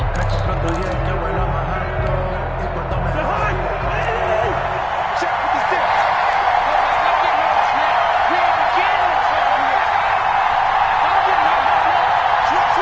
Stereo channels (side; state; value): both; identical; correlation 1.00